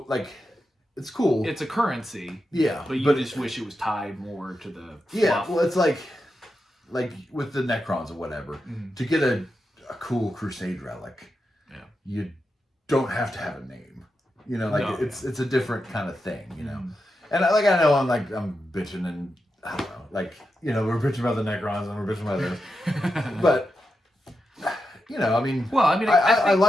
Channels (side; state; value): both; normal; correlation 0.88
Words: like, it's cool. It's a currency. Yeah. But you just wish it was tied more to the fluff. Well, it's like with the Necrons or whatever, to get a cool Crusade relic, you don't have to have a name. It's a different kind of thing, And I know I'm bitching, and I don't know, like, we're bitching about the Necrons and we're bitching about this. But I mean,